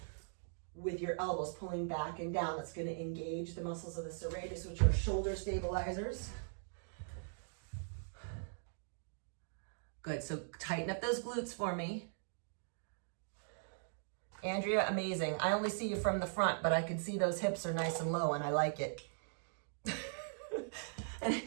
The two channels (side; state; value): left; silent; digital silence